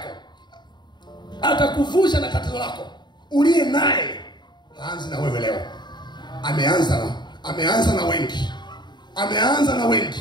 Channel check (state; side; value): late; right; 0.21 ms